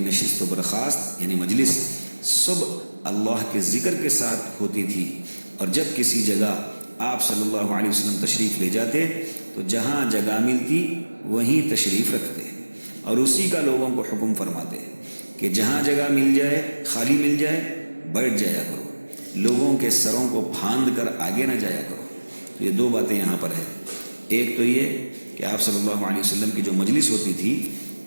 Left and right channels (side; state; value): both; inverted; correlation -1.00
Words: نشست و برخاست یعنی مجلس صبح اللہ کے ذکر کے ساتھ ہوتی تھی، اور جب کسی جگہ آپ صلی اللہ علیہ وسلم تشریف لے جاتے تو جہاں جگہ ملتی وہیں تشریف رکھتے اور اسی کا لوگوں کو حکم فرماتے کہ جہاں جگہ مل جائے، خالی مل جائے، بیٹھ جایا کرو، لوگوں کے سروں کو پھاند کر آگے نہ جایا کرو۔ تو یہ دو باتیں یہاں پر ہیں، ایک تو یہ کہ آپ صلی اللہ علیہ وسلم کی جو مجلس ہوتی تھی